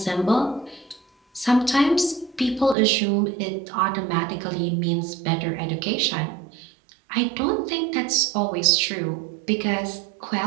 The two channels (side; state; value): left; drops out; at 2.8 s